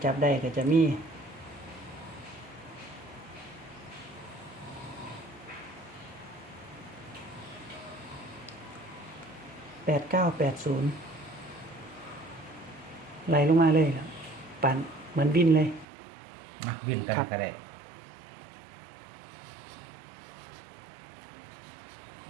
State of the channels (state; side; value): drops out; left; at 15.9 s